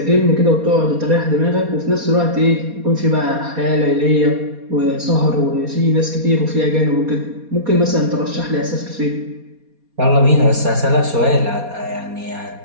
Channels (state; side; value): late; left; 4.2 ms